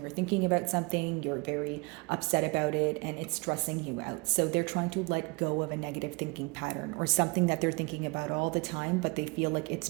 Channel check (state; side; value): quieter; left; 28.3 dB